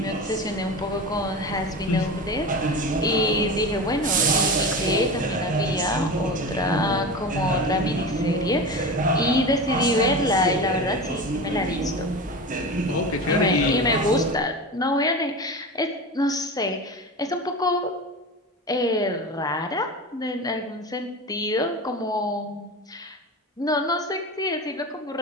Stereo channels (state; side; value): normal; both; correlation 0.28